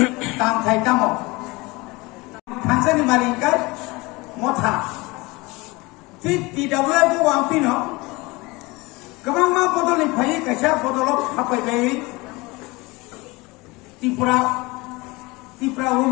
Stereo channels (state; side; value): quieter; right; 23.6 dB